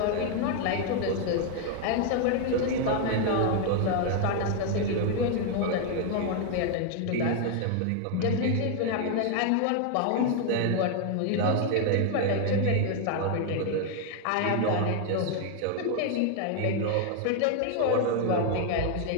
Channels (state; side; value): different; both; correlation 0.00